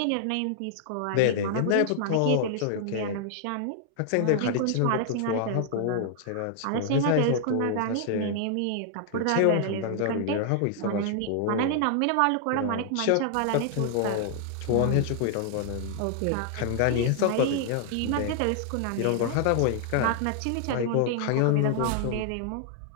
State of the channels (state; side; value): different; both; correlation 0.00